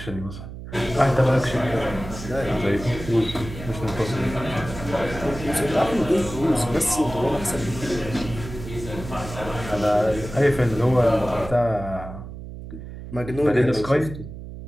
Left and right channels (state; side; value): noise; right; hum, 11 dB below the sound